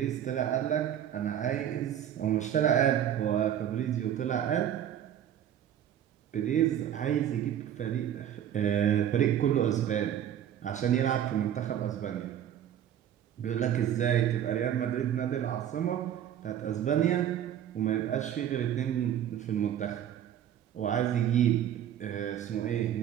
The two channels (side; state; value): left; quieter; 10.3 dB